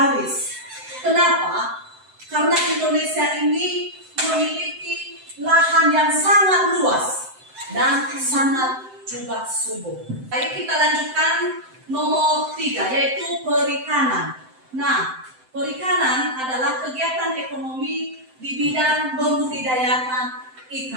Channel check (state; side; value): late; left; 7.8 ms